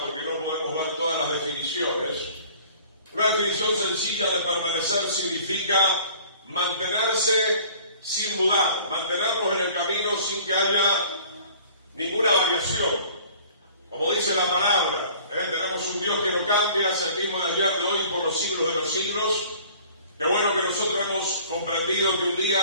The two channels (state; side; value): inverted; both; correlation -0.50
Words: porque no podemos ver todas las definiciones. Una definición sencilla de permanecer significa mantenerse sin mudar, mantenernos en el camino sin que haya ninguna variación. Como dice la palabra, tenemos un Dios que no cambia, es el mismo de ayer, de hoy, por los siglos de los siglos. Qué bueno que nosotros hemos comprendido que un día